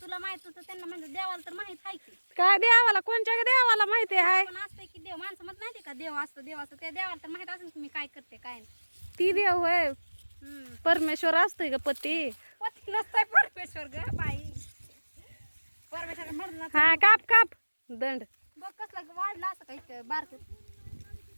तुला माहित होतं त्यांना म्हणजे देवाला तर माहित आहे की. काय देवाला, कोणच्या देवाला माहिती आहे. पण असतंय की देव, माणसं म्हणत नाही का देव असतं त्या देवाला तर माहित असेल की मी काय करते काय नाही. ती देव होय. परमेश्वर असतोय ग पती. पती नसतंय परमेश्वर ग बाई. परमेश्वर म्हणून हा काप काप दंड. बघ कसलं वाढलं असं काही बारक.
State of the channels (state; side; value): inverted; both; correlation -1.00